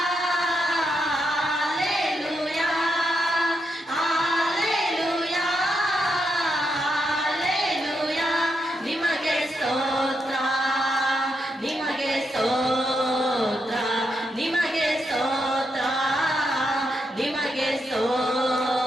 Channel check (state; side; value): normal; both; correlation 0.82